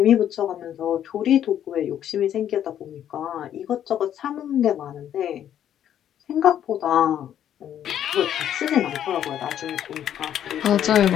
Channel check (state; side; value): quieter; right; 10.3 dB